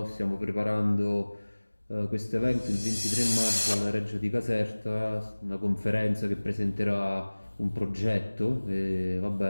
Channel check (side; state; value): both; inverted; correlation -1.00